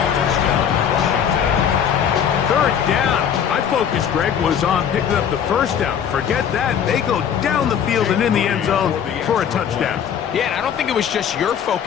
Third down. My focus, Greg, was on picking up the first down. Forget that. They go down the field and in the end zone for a touchdown. Yeah, and I don't think it was just your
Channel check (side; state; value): right; quieter; 8.3 dB